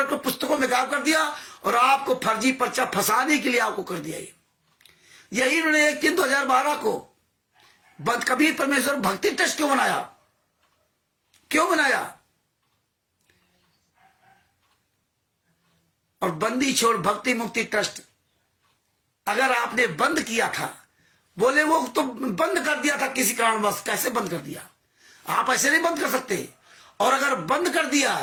को पुस्तकों में गायब कर दिया और आपको फर्जी पर्चा फंसाने के लिए आपको कर दिया। यही इन्होंने 1/3/2012 को कबीर परमेश्वर भक्ति ट्रस्ट क्यों बनाया? क्यों बनाया? और बंदी छोड़ भक्ति मुक्ति ट्रस्ट अगर आपने बंद किया था, बोले वो तो बंद कर दिया था किसी कारणवश, कैसे बंद कर दिया? आप ऐसे नहीं बंद कर सकते। और अगर बंद कर दिया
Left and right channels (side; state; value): both; identical; correlation 1.00